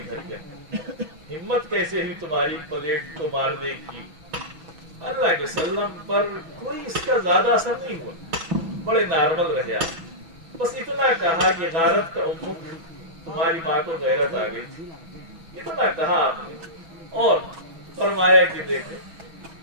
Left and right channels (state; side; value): late; left; 6.1 ms